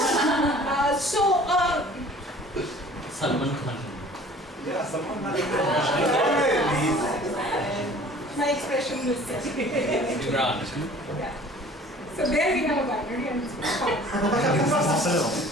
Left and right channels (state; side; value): normal; both; correlation 0.49